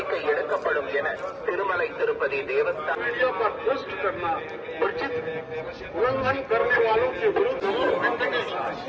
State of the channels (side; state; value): both; identical; correlation 1.00